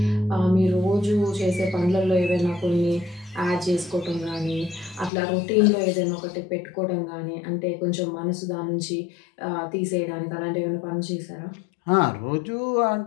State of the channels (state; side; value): drops out; right; at 5.1 s